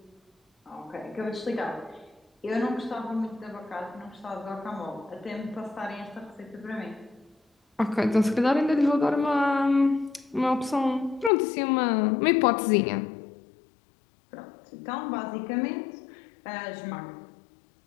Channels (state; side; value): drops out; right; at 11.3 s